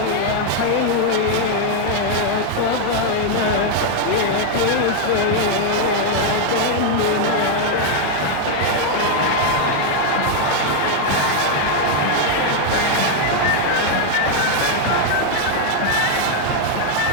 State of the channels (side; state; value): both; different; correlation 0.00